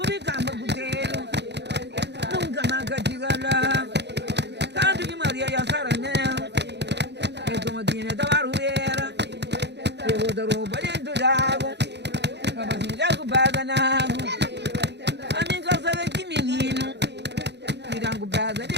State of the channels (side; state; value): left; late; 0.50 ms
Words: campo puteiro, nunca mais chega lá, tanto que Maria e a saranela, e como tinha da barulheira, eu vou dar roupa dentro d'água, Robocinho já culpada na água, a minha casa é de menino, tiram culpada